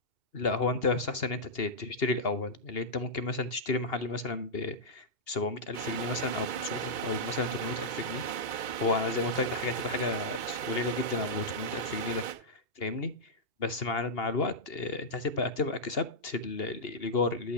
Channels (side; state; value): right; late; 2.3 ms